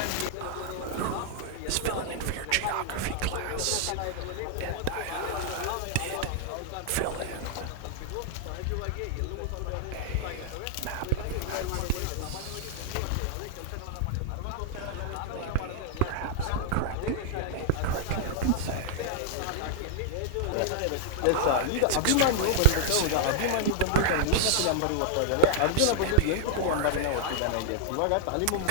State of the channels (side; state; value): both; different; correlation -0.01